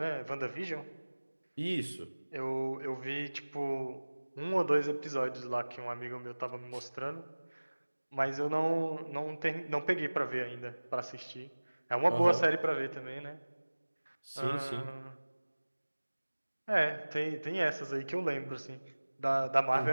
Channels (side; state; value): both; inverted; correlation -1.00